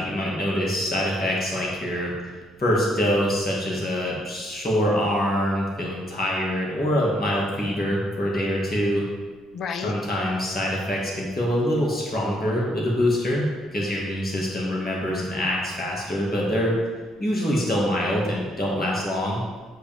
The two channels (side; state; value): right; noise; rumble, 29 dB below the sound